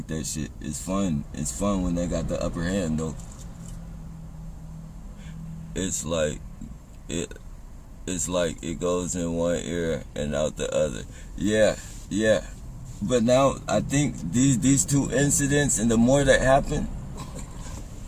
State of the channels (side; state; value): both; identical; correlation 1.00